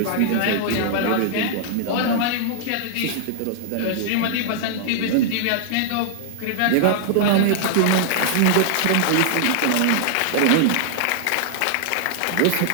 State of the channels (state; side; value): different; both; correlation -0.01